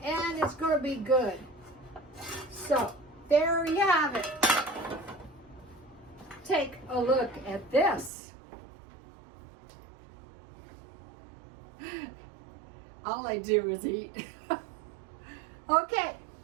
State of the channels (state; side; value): drops out; left; at 8.1 s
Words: and it's going to be good. So there you have it. Take a look at this. All I do is eat. Okay,